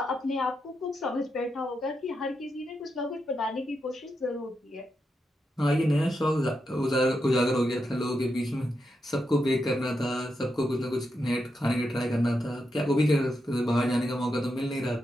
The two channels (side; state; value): both; normal; correlation 0.85